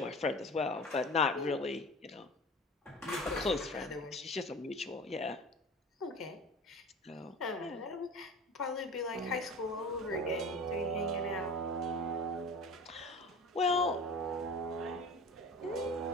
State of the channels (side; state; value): both; normal; correlation 0.36